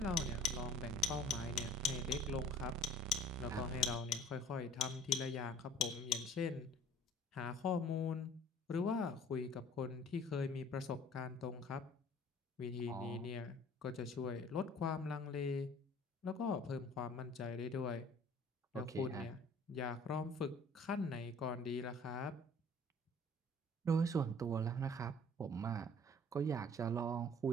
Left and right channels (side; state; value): both; normal; correlation 0.51